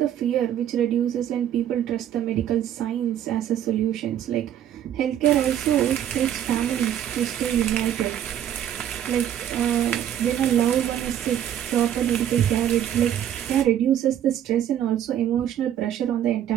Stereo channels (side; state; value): left; quieter; 10.6 dB